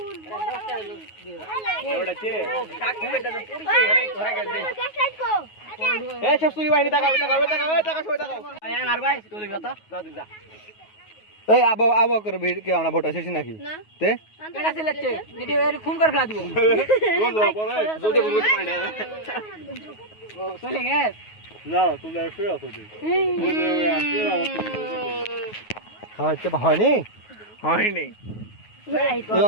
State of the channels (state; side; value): late; right; 9.4 ms